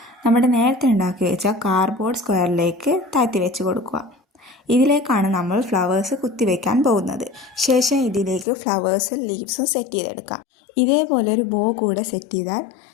നമ്മുടെ നേരത്തെ ഉണ്ടാക്കി വെച്ച കാർഡ്ബോർഡ് സ്ക്വയറിലേക്ക് താഴ്ത്തി വെച്ച് കൊടുക്കുക. ഇതിലേക്കാണ് നമ്മൾ ഫ്ലവേഴ്സ് കുത്തിവെക്കാൻ പോകുന്നത്. ശേഷം ഇതിലേക്ക് ഫ്ലവേഴ്സും ലീവ്സും സെറ്റ് ചെയ്തെടുക്കാം. ഇതേപോലെ ഒരു ബോ കൂടെ സെറ്റ് ചെയ്താൽ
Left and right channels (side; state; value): right; drops out; at 8.5 s